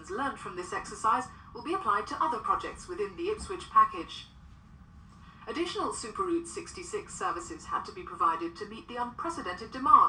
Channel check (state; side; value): identical; both; correlation 1.00